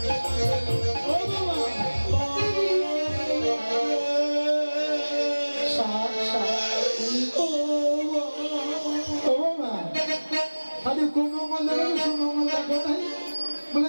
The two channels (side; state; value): both; inverted; correlation -1.00